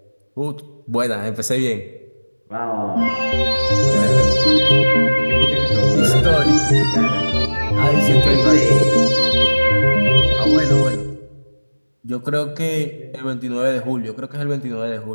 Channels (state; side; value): inverted; both; correlation -1.00